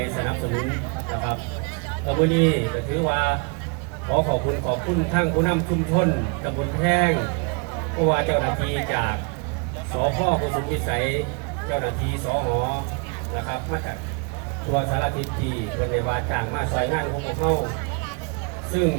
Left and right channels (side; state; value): left; quieter; 33.6 dB